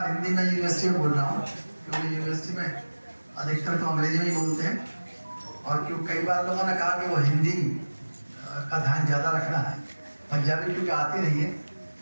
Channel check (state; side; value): inverted; both; correlation -1.00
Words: हिंदी में यूनिवर्सिटी में बोल रहा हूँ, क्योंकि यूनिवर्सिटी में अधिकतर तो अंग्रेजी में ही बोलते हैं। और क्यों कई बार लोगों ने कहा कि वो हिंदी का ध्यान ज़्यादा रखना है, पंजाबी क्योंकि आती रही है